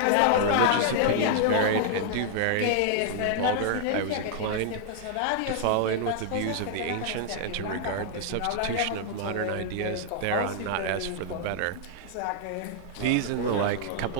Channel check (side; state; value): both; different; correlation 0.00